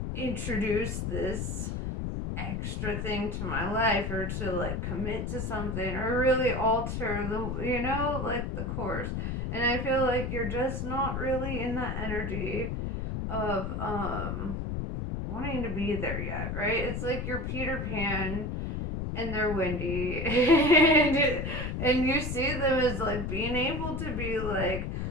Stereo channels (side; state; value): left; noise; rumble, 3 dB below the sound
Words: introduce this extra thing to my life or to like commit to something or really alter the, you know, like the course? And I feel like you're just not really in that energy of wanting to be there yet, right? It's like you're Peter Pan and they're Wendy and you see them as like being able to be like